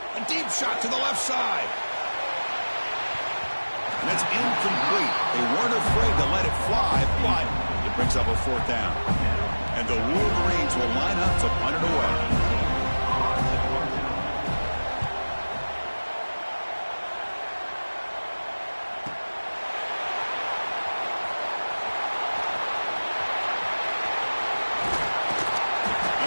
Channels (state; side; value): inverted; both; correlation -1.00